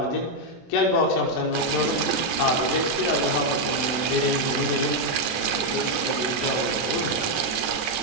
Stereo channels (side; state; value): right; late; 24 ms